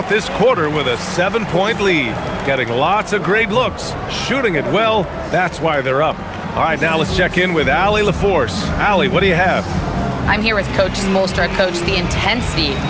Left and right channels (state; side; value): identical; both; correlation 1.00